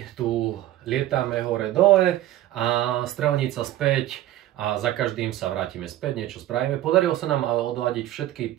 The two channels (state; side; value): quieter; left; 14.0 dB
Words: tu lietame hore-dole a strelnica späť a za každým sa vrátime späť, niečo spravíme. Podarilo sa nám odladiť všetky